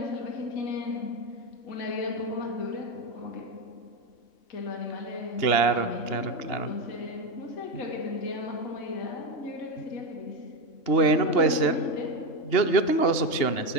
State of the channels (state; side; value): late; right; 2.9 ms